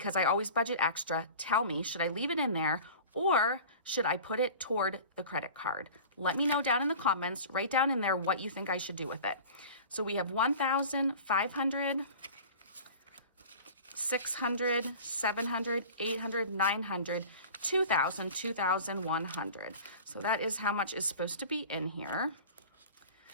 I always budget extra, tell me, should I leave it in there or should I put it toward the credit card? Let me know down in the comments. Write down in there what you think I should do with it. So we have 1,500, 600, 700, 800, 900, 2,000, 2,100. So that is how much is supposed to be in here.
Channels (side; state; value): both; inverted; correlation -0.39